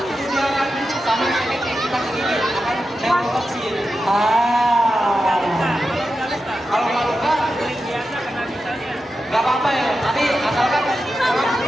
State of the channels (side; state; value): both; normal; correlation 0.90